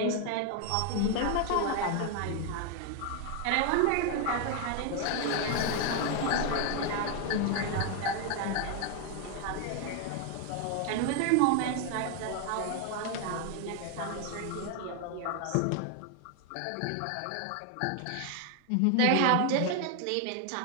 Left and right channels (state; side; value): different; both; correlation 0.01